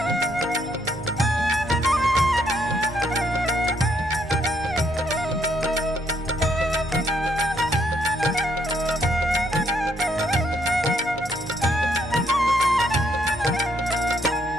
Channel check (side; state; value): both; normal; correlation 0.72